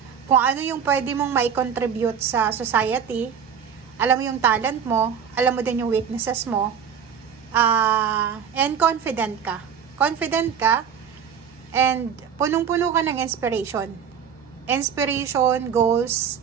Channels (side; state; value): left; quieter; 7.6 dB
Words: kung ano yung pwede mong mai-contribute sa society, alam mo yung talent mo, alam mo din yung weaknesses mo, and confident ka. Confident ka, and punong-puno ka ng inspiration. Inspiration, goals,